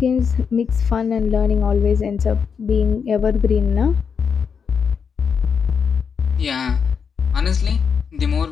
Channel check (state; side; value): quieter; right; 6.4 dB